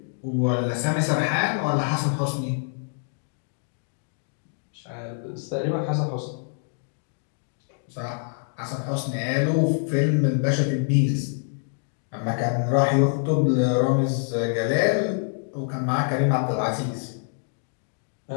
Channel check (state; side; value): silent; right; digital silence